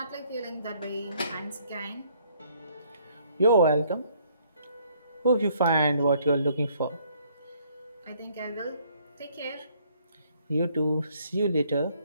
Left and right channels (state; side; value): inverted; both; correlation -0.64